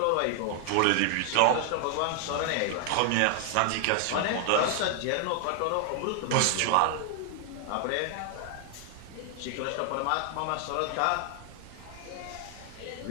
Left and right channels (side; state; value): both; different; correlation 0.00